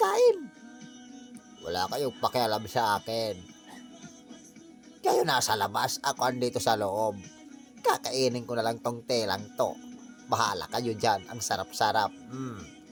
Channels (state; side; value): identical; both; correlation 1.00